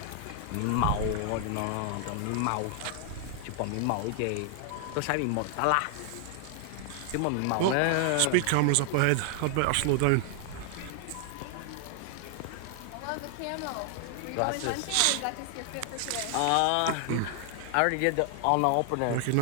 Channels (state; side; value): different; both; correlation 0.00